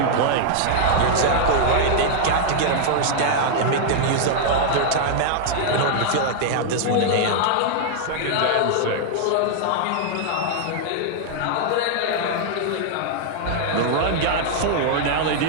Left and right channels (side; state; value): both; different; correlation -0.01